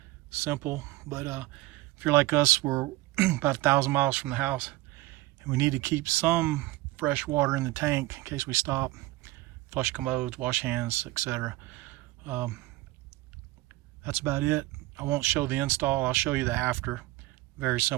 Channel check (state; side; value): quieter; left; 19.2 dB